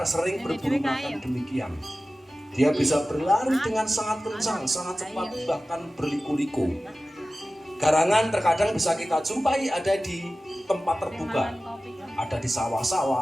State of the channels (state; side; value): normal; both; correlation 0.95